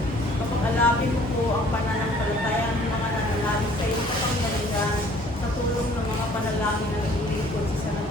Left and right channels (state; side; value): normal; both; correlation 0.55